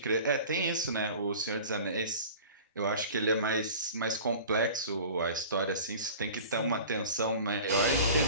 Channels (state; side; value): inverted; both; correlation -0.40